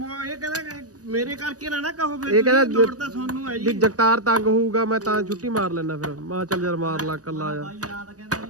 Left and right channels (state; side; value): late; left; 0.67 ms